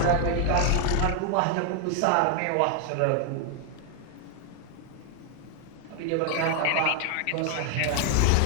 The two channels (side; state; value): both; different; correlation 0.00